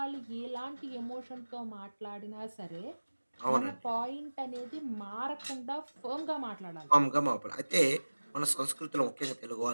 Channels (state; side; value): inverted; both; correlation -1.00